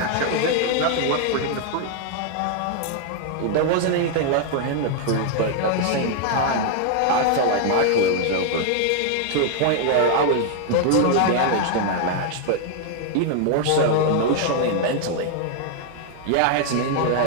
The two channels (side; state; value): both; different; correlation 0.00